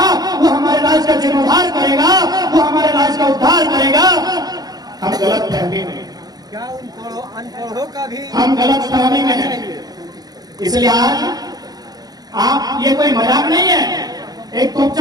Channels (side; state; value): left; late; 0.19 ms